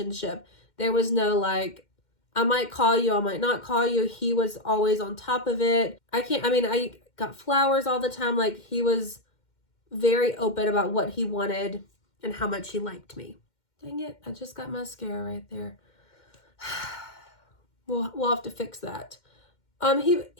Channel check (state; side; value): late; right; 2.1 ms